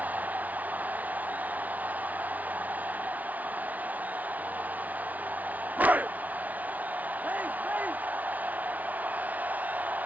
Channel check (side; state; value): left; late; 0.074 ms